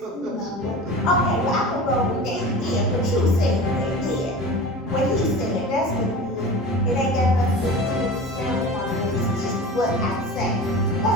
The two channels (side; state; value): both; normal; correlation 0.34